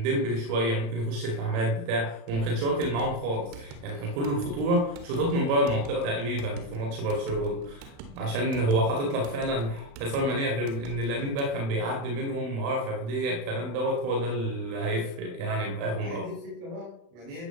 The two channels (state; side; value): late; left; 36 ms